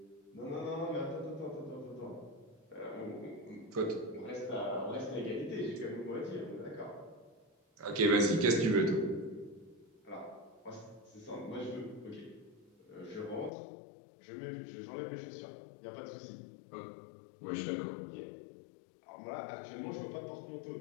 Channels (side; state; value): right; drops out; at 13.5 s